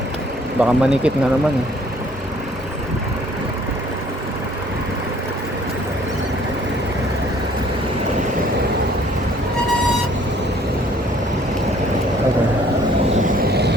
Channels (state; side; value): normal; both; correlation 0.58